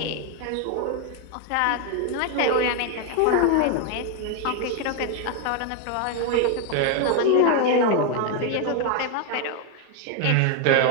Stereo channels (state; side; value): different; both; correlation 0.00